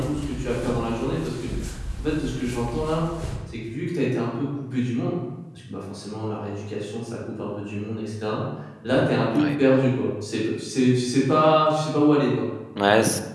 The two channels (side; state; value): both; identical; correlation 1.00